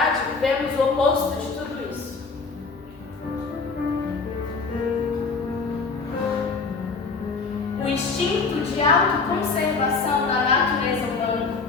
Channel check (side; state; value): right; quieter; 4.5 dB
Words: vivemos o oposto de tudo isso. O instinto de autoconservação da natureza humana